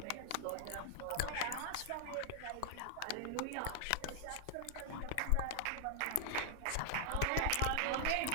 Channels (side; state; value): both; different; correlation -0.01